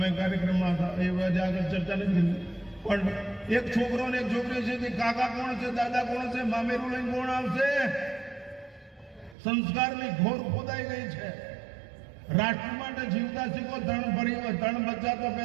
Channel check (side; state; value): left; drops out; at 9.3 s